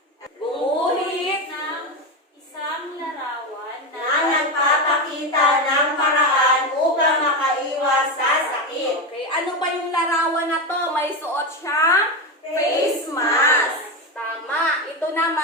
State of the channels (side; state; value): both; normal; correlation 0.15